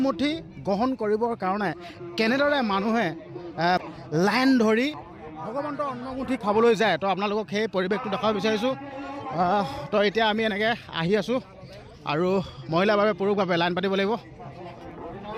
গ্ৰহণ কৰিবৰ কাৰণে কেনেদৰে মানুহে লাইন ধৰি ভগৱন্তৰ অন্নমুঠি খাবলৈ যায় তো আপোনালোকক সেই পৰিৱেশটো দেখাব বিচাৰিছোঁ তো এতিয়া আমি এনেকৈ আহি আছোঁ আৰু মহিলাৰ বাবে পুৰুষৰ বাবে লাইন পাতিব লাগিব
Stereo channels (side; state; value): both; identical; correlation 1.00